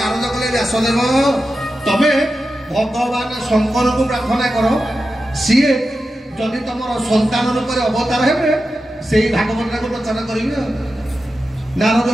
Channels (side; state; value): both; normal; correlation 0.91